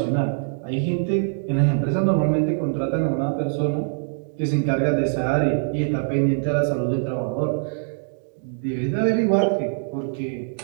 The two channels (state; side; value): silent; left; digital silence